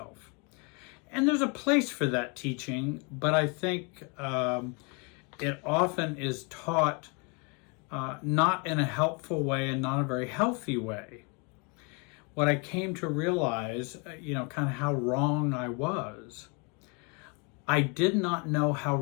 And there's a place for that teaching, but I think it often is taught not in a helpful way and not a very healthy way. What I came to realize, kind of how wrong I was. I did not know how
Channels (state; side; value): quieter; right; 33.0 dB